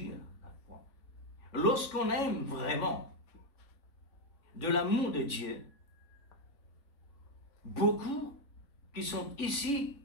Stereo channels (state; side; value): late; right; 3.5 ms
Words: la foi. Lorsqu'on aime vraiment, de l'amour de Dieu, beaucoup qui sont ici